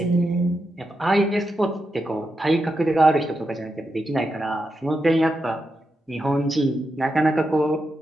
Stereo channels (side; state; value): both; normal; correlation 0.86